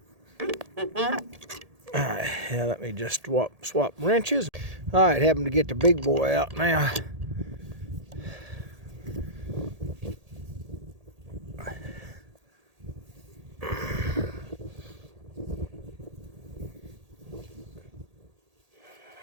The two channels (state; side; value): late; left; 1.8 ms